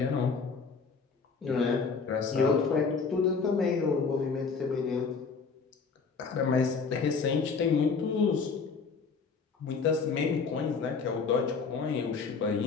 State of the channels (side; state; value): right; quieter; 5.1 dB